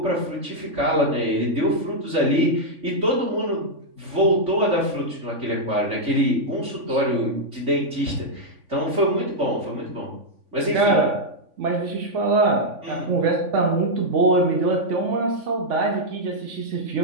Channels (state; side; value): late; left; 3.5 ms